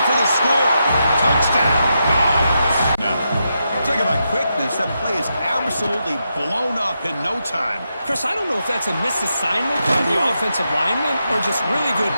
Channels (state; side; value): inverted; both; correlation -0.85